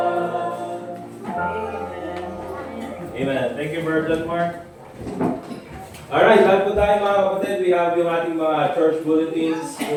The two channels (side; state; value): both; identical; correlation 1.00